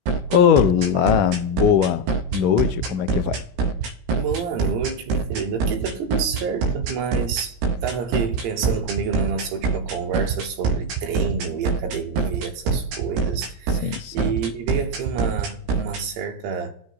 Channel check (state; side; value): late; left; 17 ms